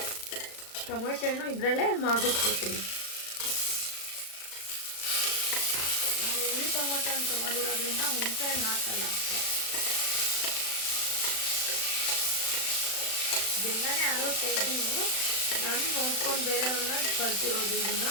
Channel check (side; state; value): right; late; 35 ms